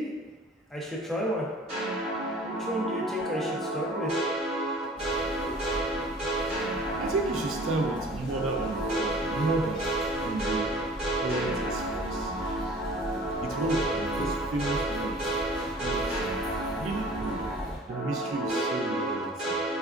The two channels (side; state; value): both; normal; correlation 0.47